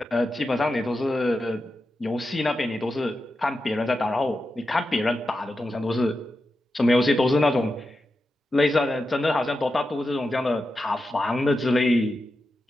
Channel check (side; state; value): both; normal; correlation 0.90